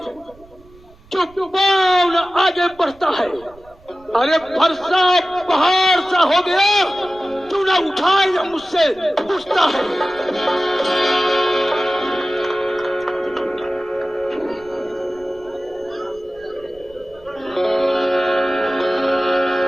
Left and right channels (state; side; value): noise; right; rumble, 26 dB below the sound